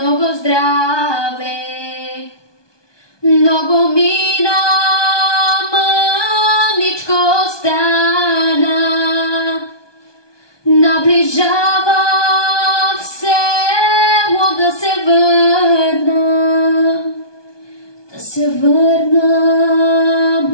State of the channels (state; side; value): late; right; 1.2 ms